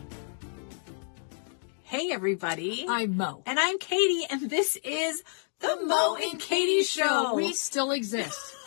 Hey, everybody. I'm Mo. And I'm Katie, and this is The Mo and Katie Show. We still exist.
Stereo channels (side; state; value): right; silent; digital silence